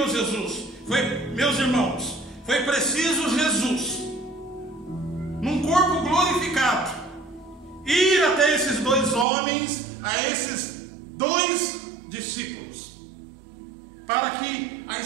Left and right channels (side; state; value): left; drops out; at 9.2 s